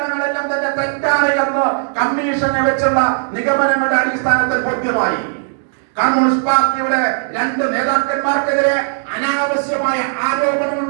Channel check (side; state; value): left; silent; digital silence